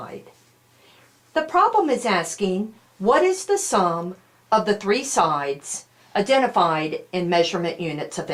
The problem is asking, what is the sum of the three sides identified in measurement units of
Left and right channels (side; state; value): both; identical; correlation 1.00